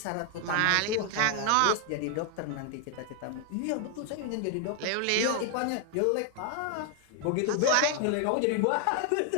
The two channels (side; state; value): both; different; correlation 0.00